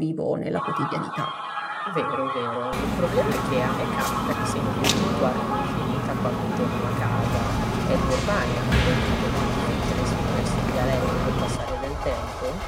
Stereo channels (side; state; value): both; identical; correlation 1.00